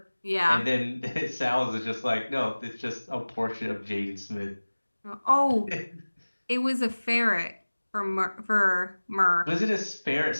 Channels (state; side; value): inverted; both; correlation -1.00